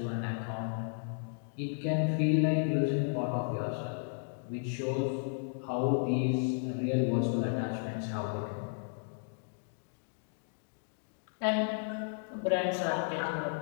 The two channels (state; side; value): silent; right; digital silence